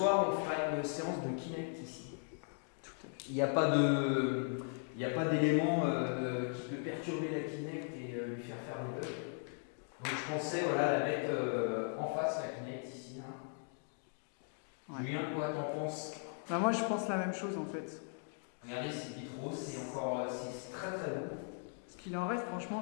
on fera une séance de Kinect ici. Tout à fait. Il n'y a pas d'élément qui peut perturber la Kinect et lui faire faire des bugs. Donc je pensais voilà, la mettre en face, la Kinect ici. Hein. Ouais. Julien, quoi t'en penses? Bah, moi je pense la même chose en fait. Regardez ces vitraux, c'est encore c'est très très beau. Ce qu'il en reste, franchement,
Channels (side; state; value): right; silent; 52 dB below the other